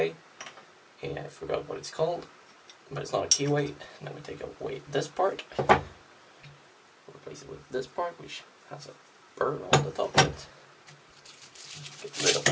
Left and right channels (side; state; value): both; identical; correlation 1.00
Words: Yeah, I forgot what it's called, but it's not a keyway. Then we take away this part. Replace it with this part, which has a burr on the top of it. Get rid of